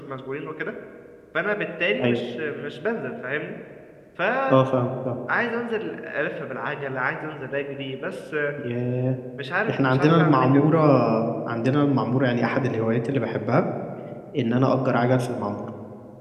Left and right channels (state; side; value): identical; both; correlation 1.00